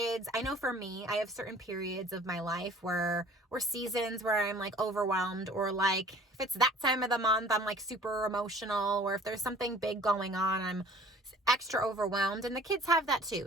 I know for me, I have certain periods of my life or seasons where I'm, like, overwhelmed, or, like, if it's that time of the month, I'm, like, super emotional, or if there's something big going on, I'm extra overwhelmed, and the kids have that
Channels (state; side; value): normal; both; correlation 0.50